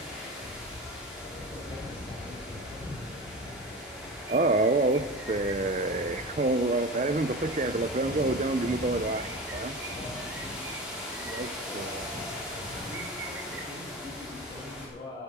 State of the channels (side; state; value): both; normal; correlation 0.30